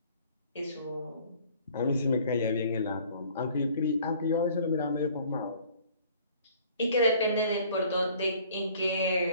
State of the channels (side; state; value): both; inverted; correlation -0.54